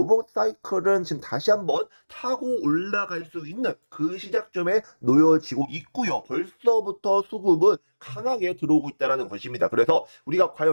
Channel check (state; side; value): inverted; both; correlation -1.00